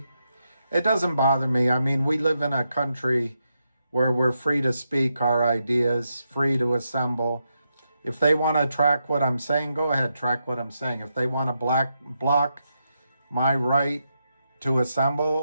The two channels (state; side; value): inverted; both; correlation -0.84